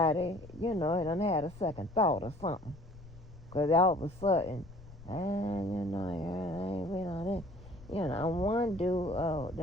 done had a second thought or something. Because all of a sudden, I ain't been on that. One dude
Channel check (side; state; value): left; noise; rumble, 19 dB below the sound